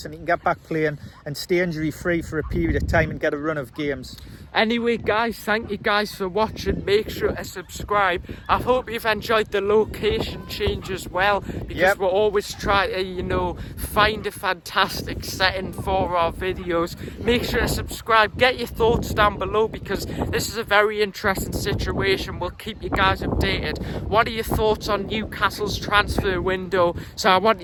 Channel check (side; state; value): both; identical; correlation 1.00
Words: and he can get back playing and stay injury free for a period of time and get a run of games. Anyway, guys, thank you guys for watching. Make sure to subscribe. I hope you've enjoyed the location change as well, because we'll always try to, find a fantastic setting for our videos. make sure to subscribe. Get your thoughts down below, because this is a very interesting situation. We'll keep you guys updated. What are your thoughts on Newcastle's transfer window? So I want